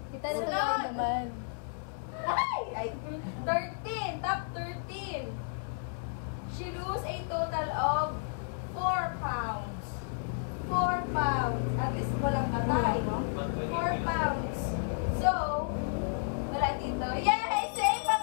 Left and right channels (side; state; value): right; silent; digital silence